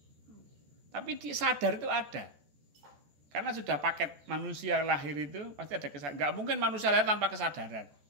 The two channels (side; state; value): left; late; 14 ms